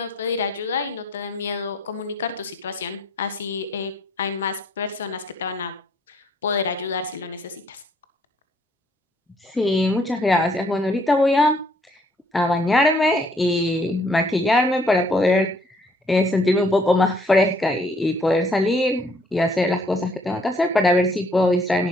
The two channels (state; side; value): normal; both; correlation 0.64